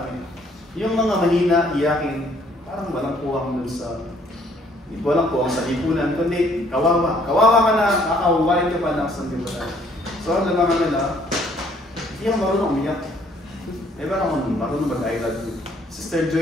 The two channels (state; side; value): normal; both; correlation 0.63